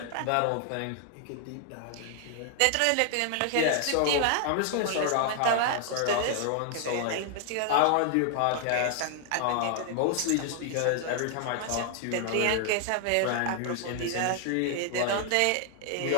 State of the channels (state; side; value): different; both; correlation 0.00